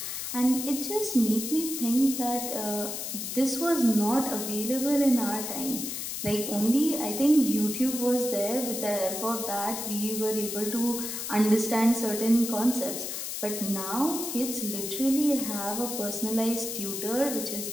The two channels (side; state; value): left; noise; hiss, 5 dB below the sound